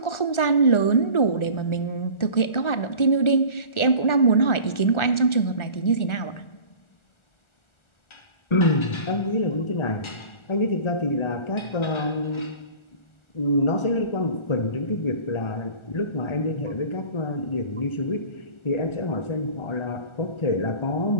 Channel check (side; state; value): right; late; 1.4 ms